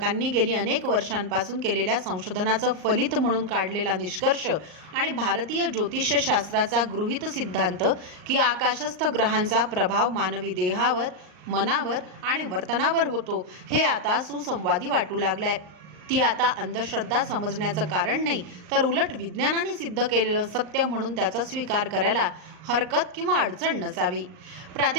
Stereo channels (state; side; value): late; left; 38 ms